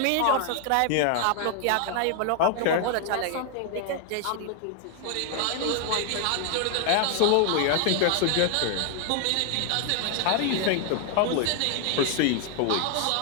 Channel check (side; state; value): both; different; correlation 0.00